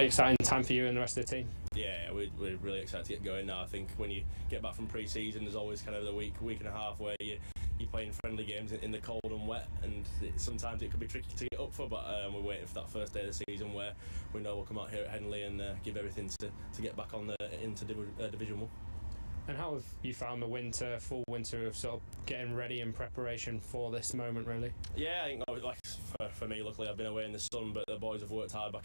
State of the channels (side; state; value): both; inverted; correlation -1.00